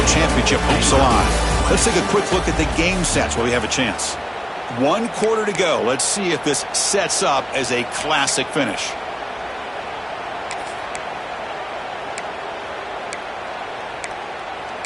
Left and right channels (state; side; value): identical; both; correlation 1.00